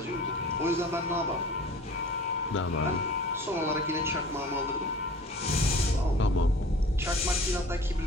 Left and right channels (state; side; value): normal; both; correlation 0.44